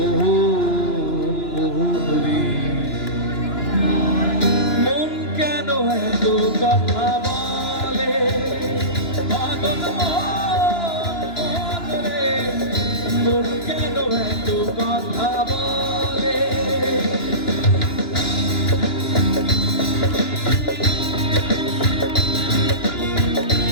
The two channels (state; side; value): late; right; 2.9 ms